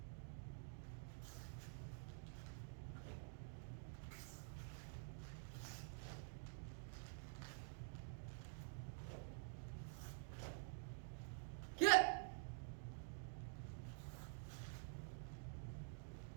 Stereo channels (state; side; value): silent; left; digital silence